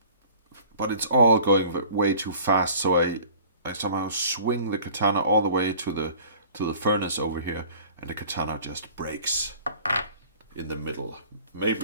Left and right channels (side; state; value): both; inverted; correlation -0.48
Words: but it's all going way too fast. So I somehow swing the katana all the way to the furnace over here, and the katana just breaks in the middle.